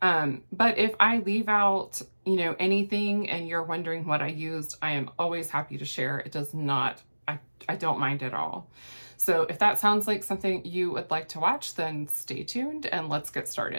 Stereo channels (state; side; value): inverted; both; correlation -1.00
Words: but if I leave out, anything and you're wondering what I used, I am always happy to share. It does not, I don't mind at all. So if that sounds like something you would like to watch, then stay tuned and let's get